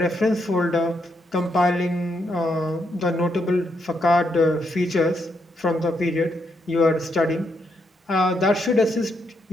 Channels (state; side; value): normal; both; correlation 0.79